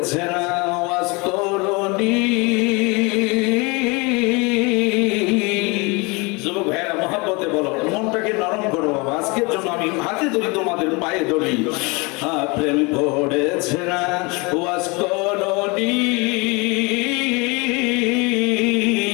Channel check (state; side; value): quieter; right; 27.8 dB